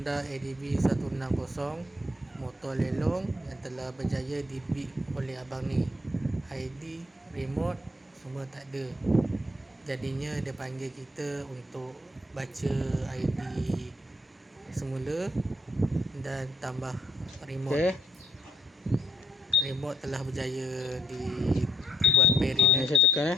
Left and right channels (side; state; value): both; normal; correlation 0.74